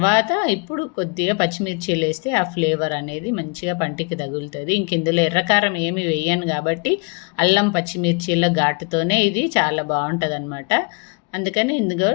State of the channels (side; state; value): right; quieter; 33.5 dB